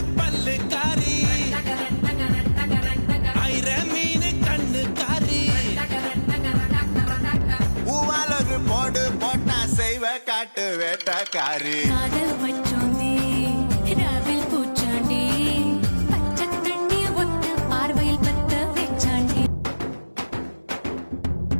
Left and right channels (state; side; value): inverted; both; correlation -1.00